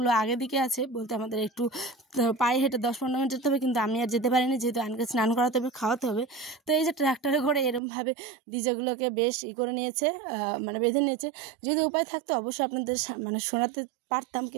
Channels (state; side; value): drops out; left; at 7.8 s